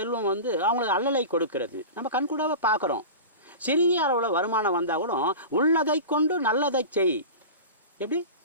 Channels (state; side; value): inverted; both; correlation -0.31